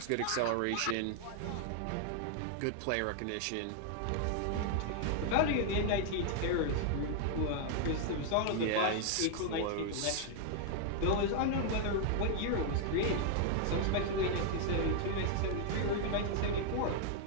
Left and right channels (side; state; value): both; different; correlation 0.00